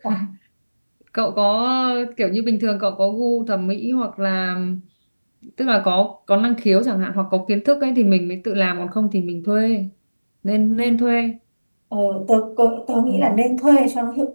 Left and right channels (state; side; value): inverted; both; correlation -1.00